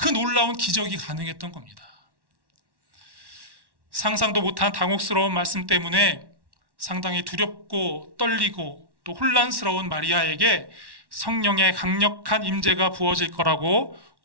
놀라운 기적이 가능했던 겁니다. 상상도 못한 당혹스러운 말씀 때문에 상당히 두렵고 떨리고 또 혼란스러운 마리아에게 성령의 강력한 임재가 부어질 거라고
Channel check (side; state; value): left; late; 1.1 ms